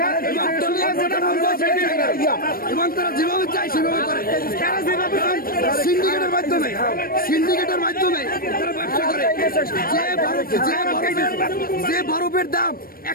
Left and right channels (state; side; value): late; right; 0.43 ms